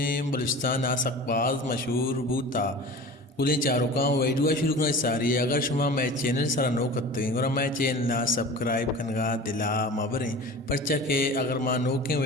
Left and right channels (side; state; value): both; normal; correlation 0.37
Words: بلوچستان آ سک باز مشہور بوتا گلیں چاروں کا ویڈیو شروع کرنا ساری ہے اگر شما میں چینل سارا نو کرتے ہیں اور میں چینل سبسکرائب کنگا دلا مبریں پرچہ کہ اگر ماں نو کے